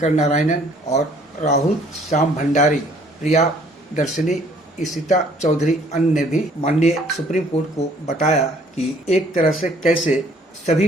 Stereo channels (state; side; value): normal; both; correlation 0.59